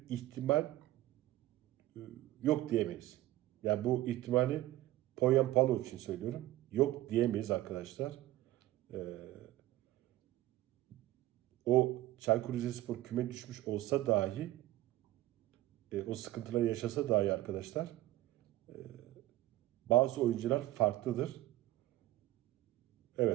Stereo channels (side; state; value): left; quieter; 15.9 dB